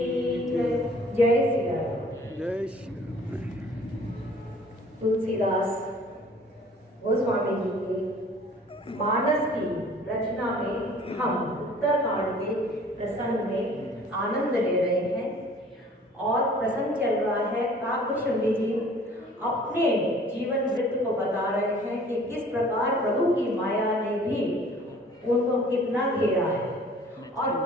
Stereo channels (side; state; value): both; normal; correlation 0.51